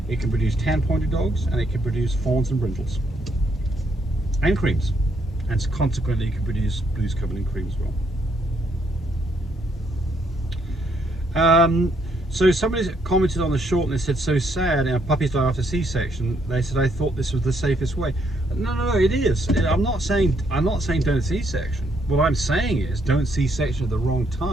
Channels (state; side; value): normal; both; correlation 0.72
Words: It can produce tan-pointed dogs, and it can produce fawns and brindles and creams. And consequently, it can produce blues covered in cream as well. So somebody commented on the short and they said, so sad, puppies die after C-section. They said, I thought this was the safest way. No, it is. I'm not saying don't C-section. What I'm saying is don't C-section at the wrong